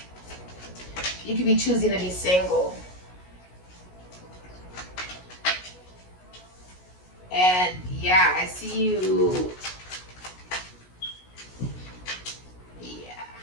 You could be choosing to be single. And yeah, I see you. Yeah.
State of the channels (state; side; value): late; right; 16 ms